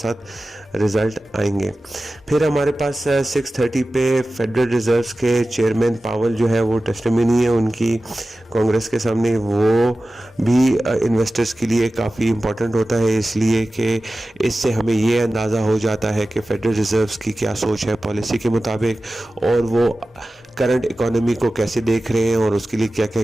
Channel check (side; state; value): both; normal; correlation 0.95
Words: रिजल्ट आएंगे। फिर हमारे पास 6:30 पे फेडरल रिजर्व के चेयरमैन पावल जो है वो टेस्टिमनी है उनकी कांग्रेस के सामने, वो भी इन्वेस्टर्स के लिए काफ़ी इम्पोर्टेंट होता है, इसलिए कि इससे हमें ये अंदाज़ा हो जाता है कि फेडरल रिजर्व्स की क्या सोच है पॉलिसी के मुताबिक, और वो करंट इकोनॉमी को कैसे देख रहे हैं और उसके लिए क्या क्या